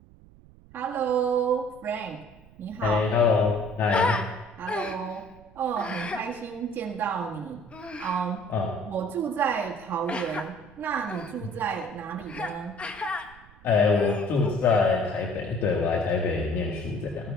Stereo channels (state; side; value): noise; right; rumble, 24 dB below the sound